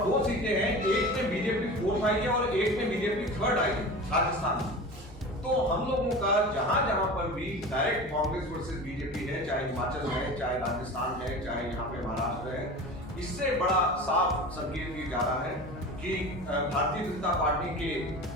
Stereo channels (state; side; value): normal; both; correlation 0.33